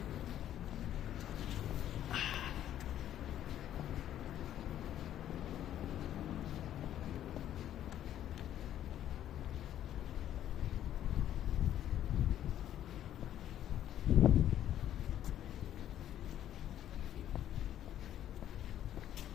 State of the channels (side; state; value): right; quieter; 11.4 dB